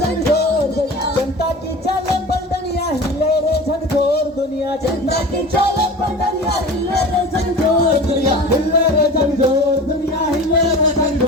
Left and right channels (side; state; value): both; normal; correlation 0.35